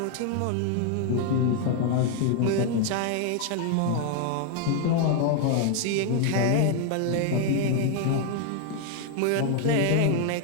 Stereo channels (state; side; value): different; both; correlation 0.00